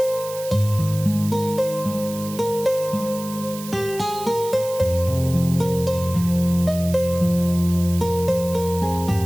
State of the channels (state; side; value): noise; right; hiss, 14 dB below the sound